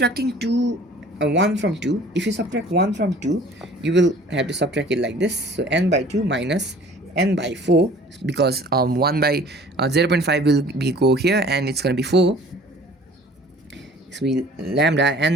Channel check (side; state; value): both; normal; correlation 0.50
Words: 1 from 2, if you subtract 1 from 2, you will have to subtract it like this. So n by 2 minus n by 4, because 1 by 0.5 will be go here and it's going to be 4. So we lambda n